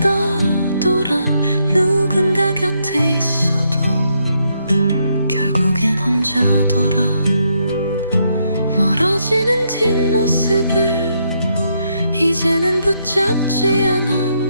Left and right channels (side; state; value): both; inverted; correlation -0.77